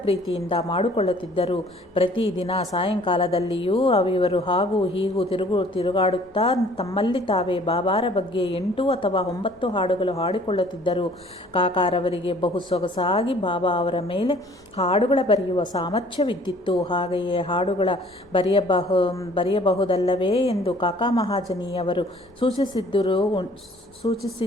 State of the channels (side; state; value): both; normal; correlation 0.55